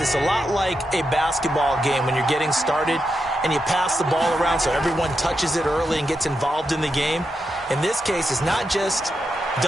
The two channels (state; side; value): normal; both; correlation 0.86